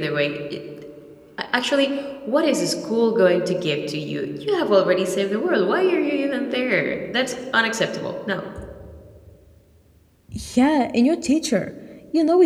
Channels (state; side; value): identical; both; correlation 1.00